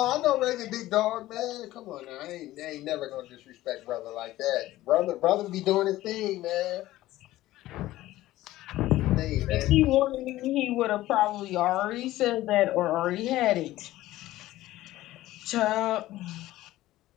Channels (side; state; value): right; quieter; 16.0 dB